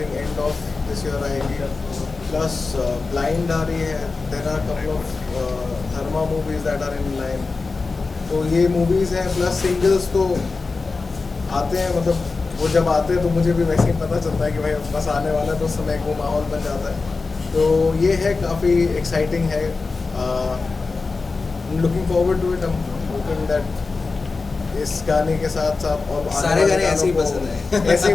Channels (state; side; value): quieter; right; 4.0 dB